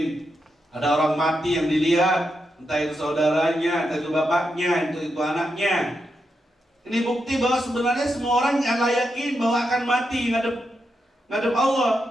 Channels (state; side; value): normal; both; correlation 0.85